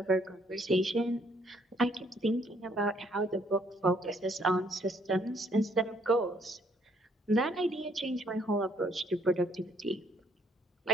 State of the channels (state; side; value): normal; both; correlation 0.67